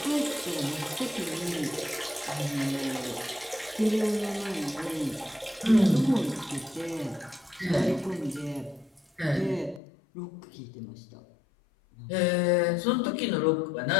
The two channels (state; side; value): drops out; right; at 9.8 s